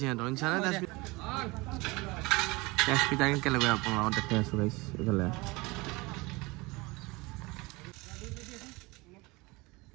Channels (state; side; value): quieter; left; 24.0 dB